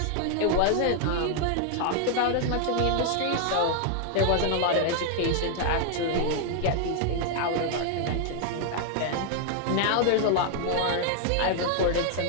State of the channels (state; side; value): different; both; correlation 0.00